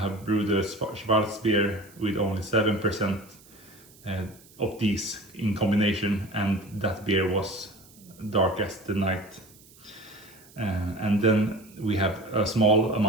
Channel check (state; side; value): noise; right; hiss, 25 dB below the sound